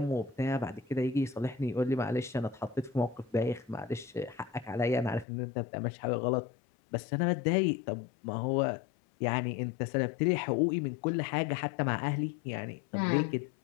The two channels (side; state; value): right; drops out; at 5.2 s